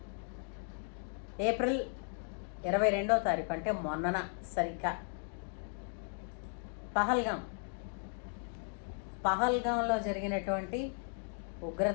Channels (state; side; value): silent; right; 54 dB below the other